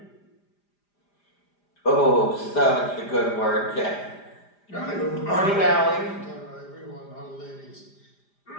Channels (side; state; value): right; late; 5.0 ms